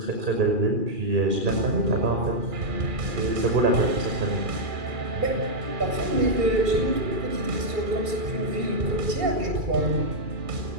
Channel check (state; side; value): late; left; 2.4 ms